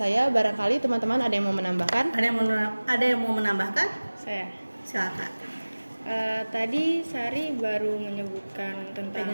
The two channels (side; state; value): both; inverted; correlation -1.00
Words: barangkali teman-teman ada yang mau menambahkan? Ada yang mau menambahkan? Saya. Silakan. Tadi Sari baru menyebutkan tentang